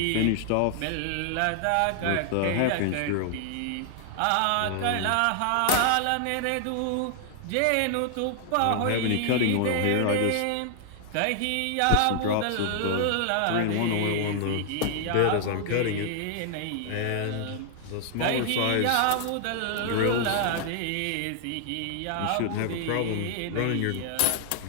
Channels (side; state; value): both; different; correlation 0.00